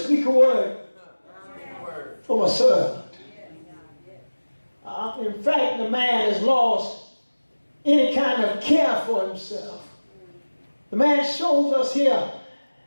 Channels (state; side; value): inverted; both; correlation -1.00